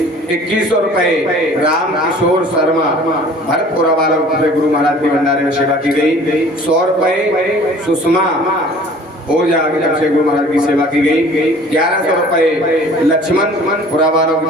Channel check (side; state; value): both; normal; correlation 0.49